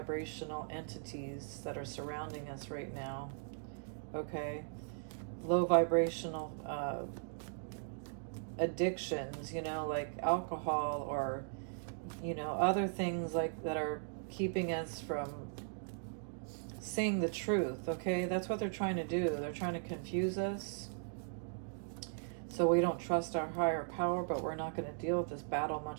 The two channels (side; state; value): left; silent; digital silence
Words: entities that are surrounding us right now, okay? Low vibrational addictions, you know, like alcohol or, you know, other things like that are keeping us from seeing the truth, okay? That's what they're trying to do. They're trying to confuse us so we don't trust our higher power, but we're not going to deal with this battle